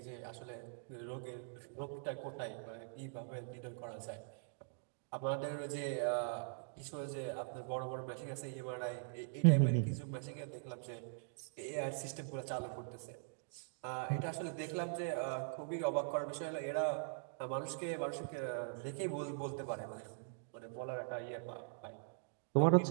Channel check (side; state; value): left; silent; digital silence